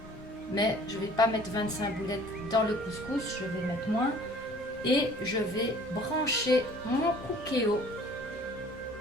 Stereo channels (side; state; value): both; normal; correlation 0.52